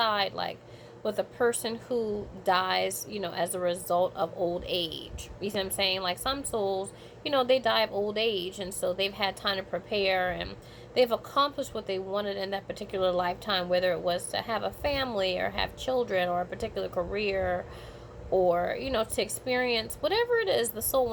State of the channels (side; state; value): both; identical; correlation 1.00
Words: like with a person who dies, as a result of old age. You see what I'm saying? Like some souls, they die of old age, and so they've had time to prepare, and they've accomplished what they wanted in that particular lifetime, whether it was to have a family or have children or a particular career, or to experience whatever it is the soul